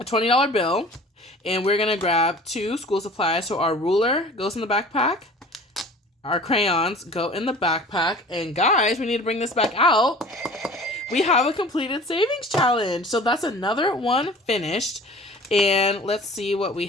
$20 bill and we're going to grab 2 school supplies. So our ruler goes in the backpack. Our crayons go in the backpack. And guys, we need to bring this back out. We have a completed savings challenge. So that's another one finished. And let's see what we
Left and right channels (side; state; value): both; normal; correlation 0.44